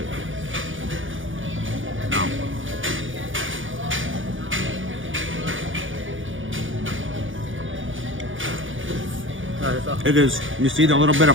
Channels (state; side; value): late; left; 0.57 ms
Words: nice. It is. You see the little bit of